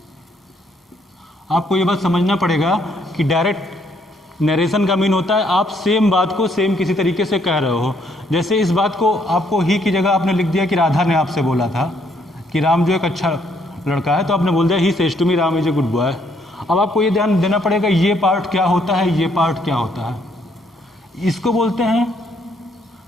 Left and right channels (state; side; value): normal; both; correlation 0.70